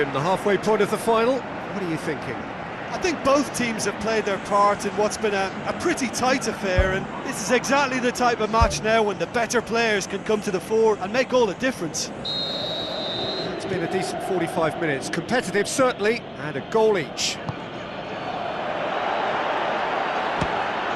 the halfway point of the final, what are you thinking? I think both teams have played their part in what's been a pretty tight affair, and this is exactly the type of match now when the better players can come to the fore and make all the difference. It's been a decent 45 minutes, competitive certainly, and a goal each.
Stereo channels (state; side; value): identical; both; correlation 1.00